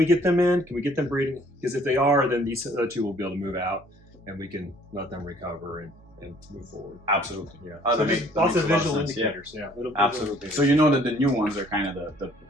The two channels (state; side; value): normal; both; correlation 0.58